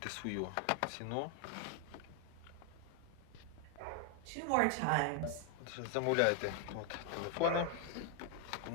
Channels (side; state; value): both; different; correlation 0.00